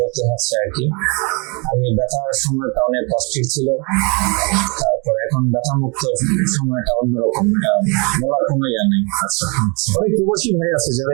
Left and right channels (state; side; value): quieter; left; 31.6 dB